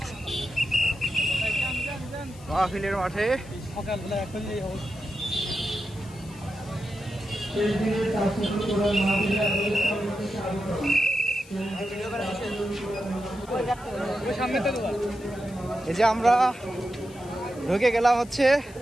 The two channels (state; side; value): noise; left; hiss, 23 dB below the sound